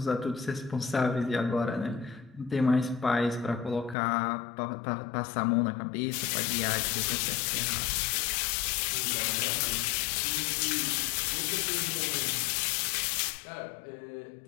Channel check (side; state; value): right; drops out; at 4.0 s